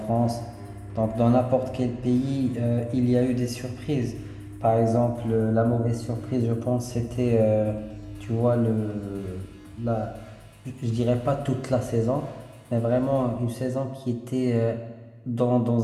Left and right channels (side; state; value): both; identical; correlation 1.00